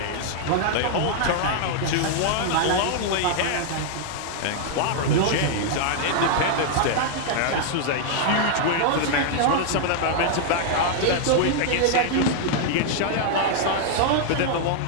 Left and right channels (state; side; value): different; both; correlation -0.01